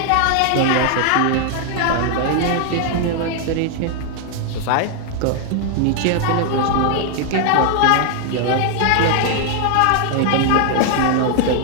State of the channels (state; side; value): different; both; correlation 0.00